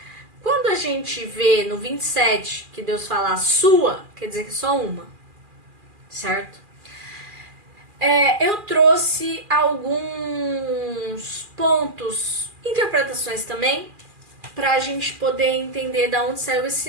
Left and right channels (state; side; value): late; left; 2.4 ms